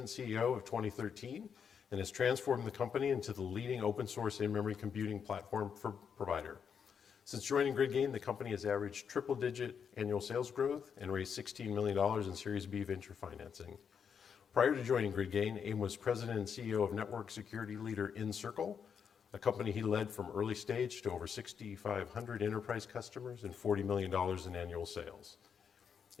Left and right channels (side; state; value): right; quieter; 7.1 dB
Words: and CEO of 2013 and has transformed the company into the leading open source in-memory computing platform provider. Since joining GridGain, the company has averaged triple-digit annual sales growth and raised $16 million in Series B venture financing. Prior to joining GridGain, Abe was president and CEO of network security leader Encircle, a company he led from early stage to over 6,500 enterprise customers and $40 million in annual sales.